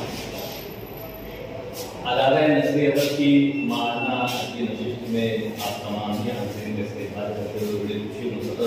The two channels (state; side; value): identical; both; correlation 1.00